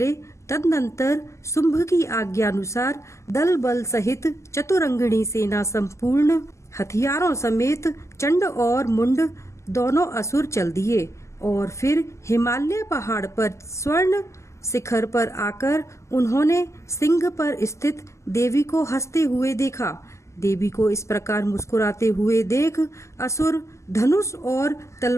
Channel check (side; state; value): right; late; 0.14 ms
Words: तदनंतर शुंभ की आज्ञानुसार दल बल सहित चतुरंगिणी सेना संपूर्ण हथियारों समेत चंड और मुंड दोनों असुर चल दिए और फिर हिमालय पहाड़ पर स्वर्ण शिखर पर आकर उन्होंने सिंह पर स्थित देवी को हंसते हुए देखा। देवी को इस प्रकार मुस्कुराते हुए देख असुर धनुष और